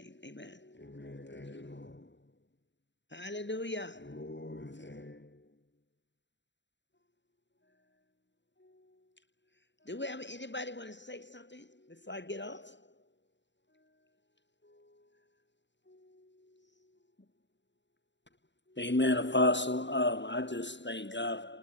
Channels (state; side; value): late; right; 0.53 ms